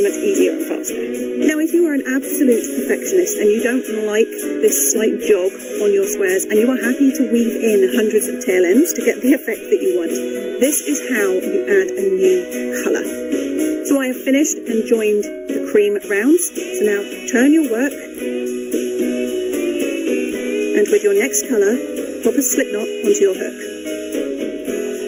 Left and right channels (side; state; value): both; identical; correlation 1.00